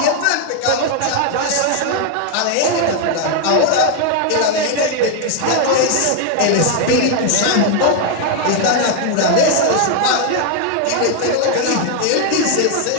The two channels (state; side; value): different; both; correlation 0.00